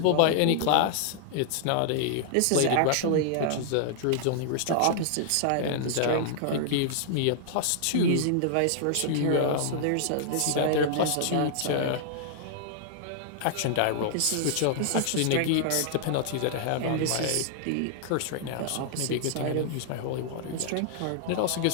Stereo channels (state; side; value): different; both; correlation -0.01